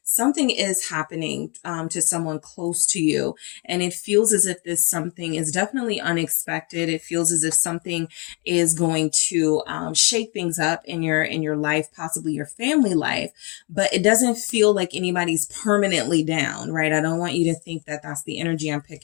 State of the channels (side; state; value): right; quieter; 28.8 dB